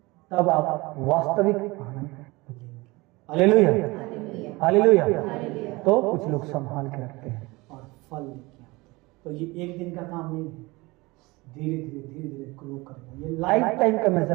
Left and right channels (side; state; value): left; quieter; 22.9 dB